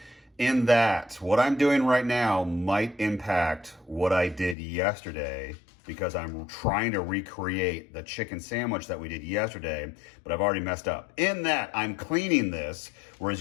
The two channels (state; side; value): drops out; right; at 4.5 s